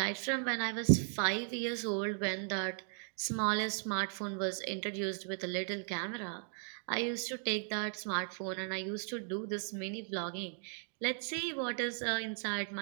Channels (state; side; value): silent; left; 53 dB below the other